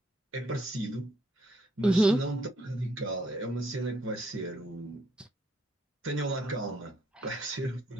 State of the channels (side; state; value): both; normal; correlation 0.72